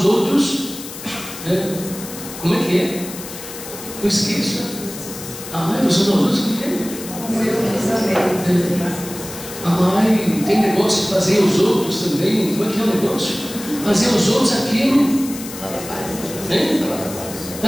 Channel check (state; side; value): noise; left; hiss, 12 dB below the sound